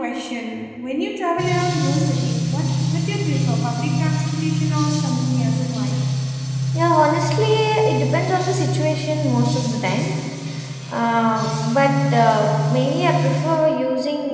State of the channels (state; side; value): identical; both; correlation 1.00